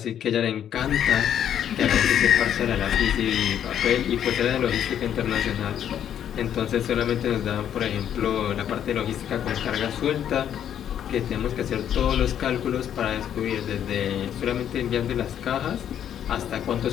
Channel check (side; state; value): right; quieter; 9.8 dB